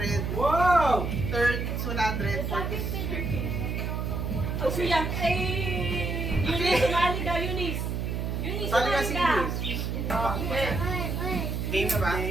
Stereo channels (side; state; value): right; noise; hum, 2 dB below the sound